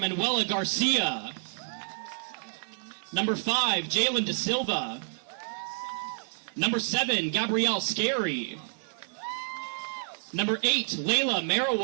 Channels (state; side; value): silent; left; digital silence